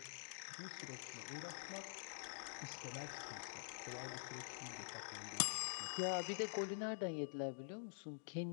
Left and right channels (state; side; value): silent; right; digital silence